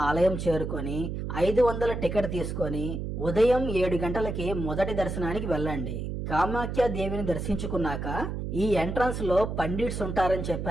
ఆలయం చేరుకొని 500 టికెట్ తీసుకొని ఉదయం 7 గంటలకి మొదటి దర్శనానికి వెళ్ళండి. కామాఖ్య దేవిని దర్శించుకున్నాక ఈ ఎంట్రన్స్ లో పండిట్స్ ఉంటారని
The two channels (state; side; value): noise; right; hum, 4 dB below the sound